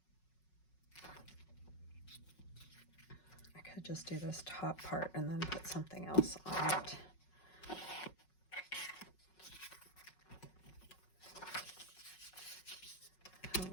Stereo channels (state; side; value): late; right; 5.4 ms